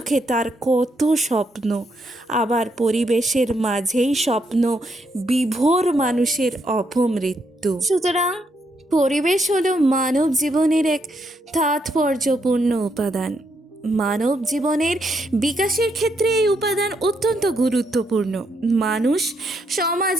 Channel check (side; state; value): both; normal; correlation 0.77